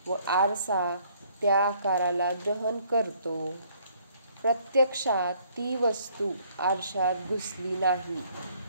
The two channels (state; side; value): inverted; both; correlation -0.63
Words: व आरसा त्या आकाराला ग्रहण करतो. प्रत्यक्षात ती वस्तू आरशात घुसली नाही